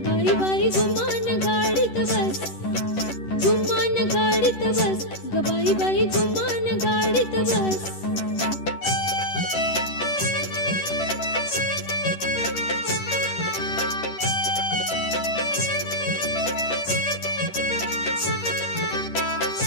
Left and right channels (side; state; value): right; late; 10 ms